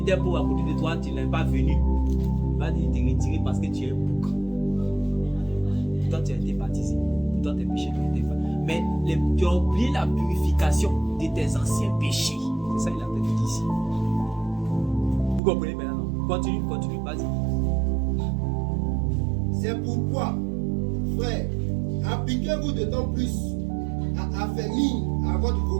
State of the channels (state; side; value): drops out; left; at 15.4 s